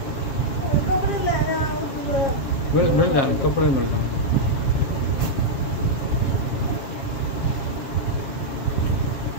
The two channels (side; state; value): right; late; 7.4 ms